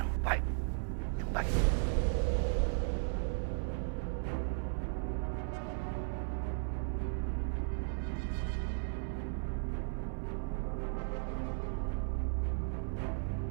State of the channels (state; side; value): silent; left; 54 dB below the other